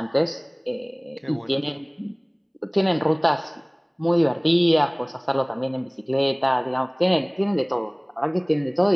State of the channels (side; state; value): both; identical; correlation 1.00